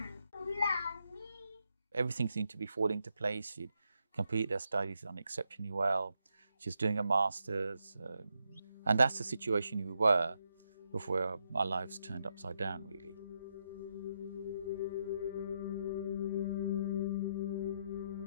love me. Everything seemed to be falling into place. She'd completed her studies on exceptionally well. She was doing a master's. And that's the situation we were before our lives turned upside down, really.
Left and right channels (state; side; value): inverted; both; correlation -0.81